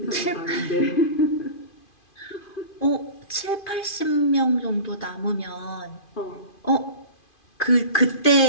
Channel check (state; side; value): late; right; 2.5 ms